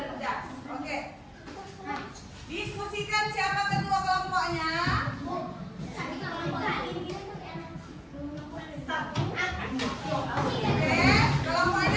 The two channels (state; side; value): identical; both; correlation 1.00